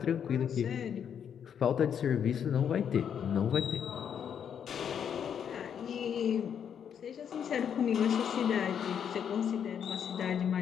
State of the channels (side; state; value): right; quieter; 8.2 dB